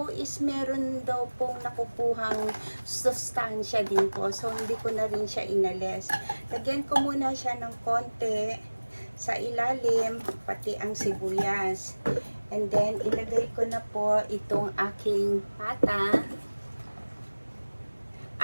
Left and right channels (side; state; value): both; inverted; correlation -1.00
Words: is meron daw pong nakukuhang sustansya din po. So, hindi ko na rin siya inalis. Lagyan ko muna siya ng konti sa ilalim, pati ang sibuyas. And then, ilagay ko na po itong aking pata.